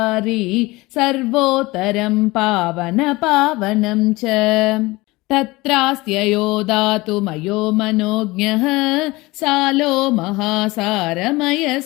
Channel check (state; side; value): quieter; right; 21.4 dB